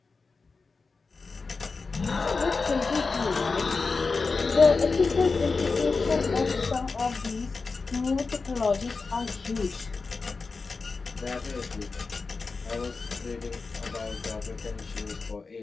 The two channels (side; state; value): right; quieter; 4.3 dB